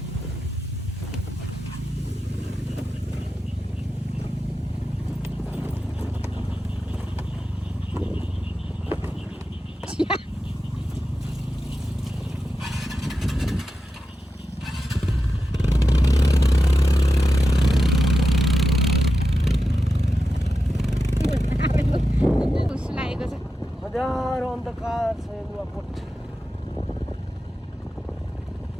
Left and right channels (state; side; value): normal; both; correlation 0.90